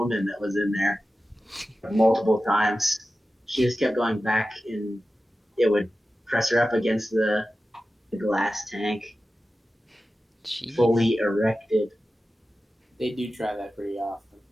that was in there multiple times. She just kept going back, and it would press her up against the glass tank. Jeez. Fully erected. They do try that pretty often.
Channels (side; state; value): both; normal; correlation 0.94